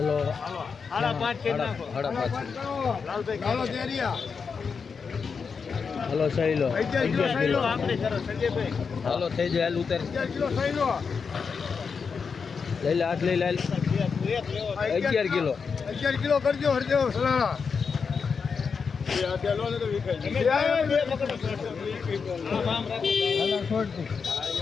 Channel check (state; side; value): quieter; right; 5.6 dB